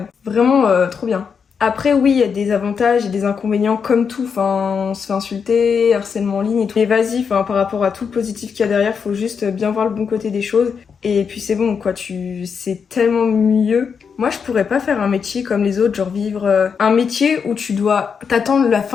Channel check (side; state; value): right; quieter; 6.3 dB